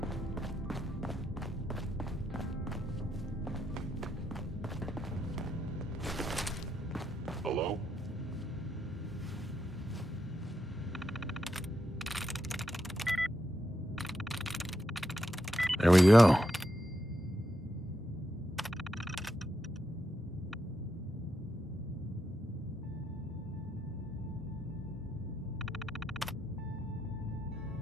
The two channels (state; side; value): normal; both; correlation 0.83